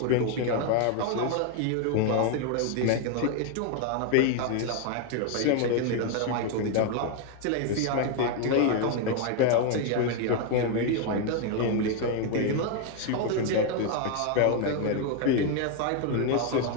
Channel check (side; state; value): both; different; correlation 0.01